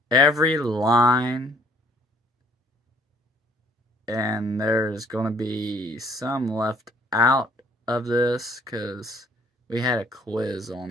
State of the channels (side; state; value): both; normal; correlation 0.60